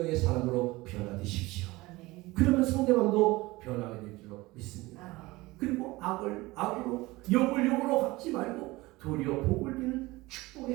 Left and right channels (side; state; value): left; quieter; 20.7 dB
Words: 사람으로 변화되십시오. 그러면 상대방도 변하게 될 줄로 믿습니다. 그리고 악으로 욕으로 갚지 말고 도리어 복을 비는